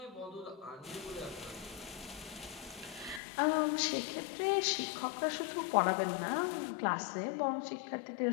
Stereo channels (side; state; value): right; drops out; at 3.2 s